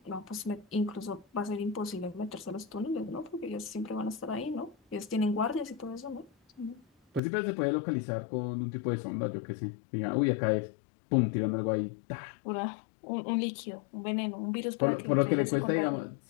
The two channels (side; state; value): right; drops out; at 7.2 s